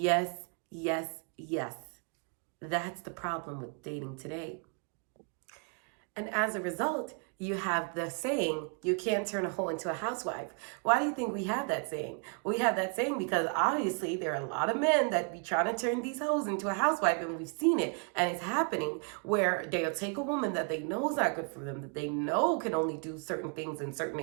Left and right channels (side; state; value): left; quieter; 39.4 dB